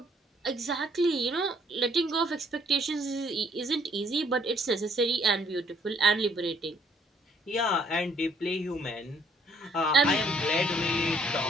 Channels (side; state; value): both; normal; correlation 0.64